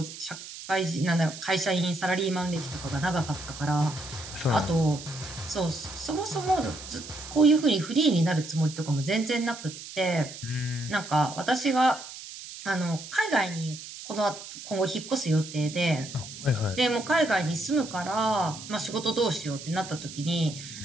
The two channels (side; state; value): right; noise; hiss, 12 dB below the sound